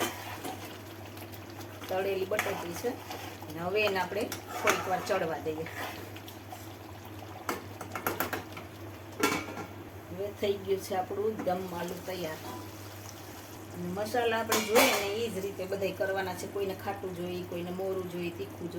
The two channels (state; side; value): identical; both; correlation 1.00